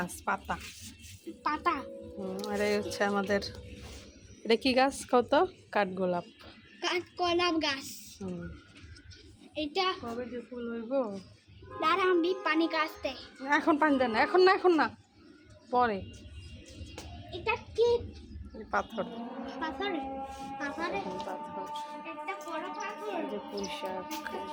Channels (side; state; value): both; identical; correlation 1.00